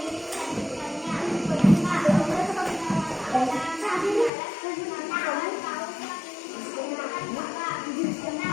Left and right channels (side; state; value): right; drops out; at 4.3 s